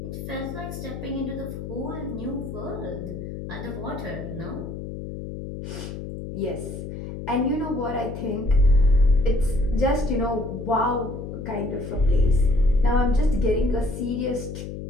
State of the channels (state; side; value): noise; left; hum, 8 dB below the sound